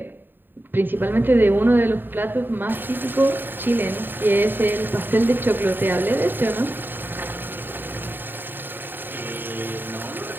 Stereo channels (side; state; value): left; late; 0.094 ms